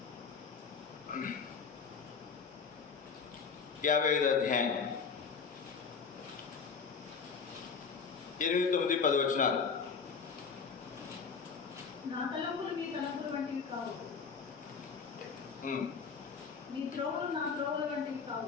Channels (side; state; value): right; quieter; 5.6 dB